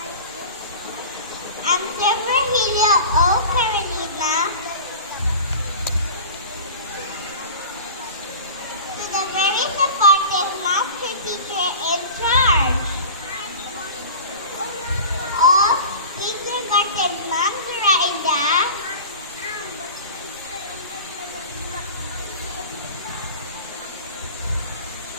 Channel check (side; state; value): both; inverted; correlation -0.36